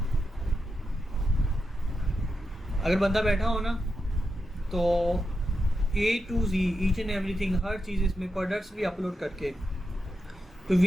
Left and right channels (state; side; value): normal; both; correlation 0.87